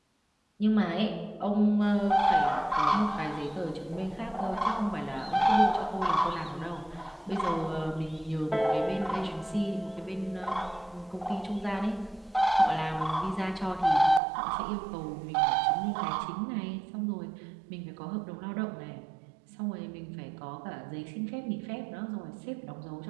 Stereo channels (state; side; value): drops out; left; at 14.2 s